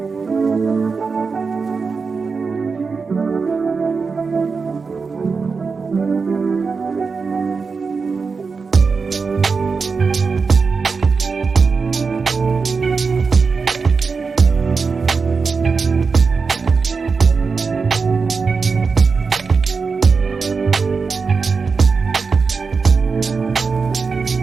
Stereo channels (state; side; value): quieter; left; 4.9 dB